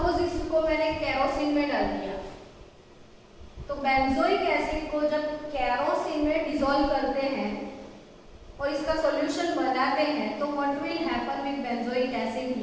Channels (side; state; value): both; identical; correlation 1.00